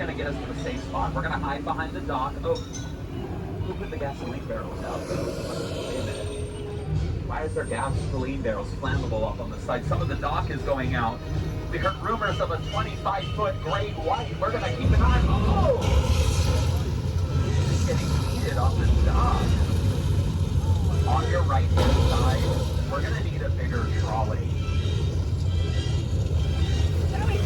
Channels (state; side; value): identical; both; correlation 1.00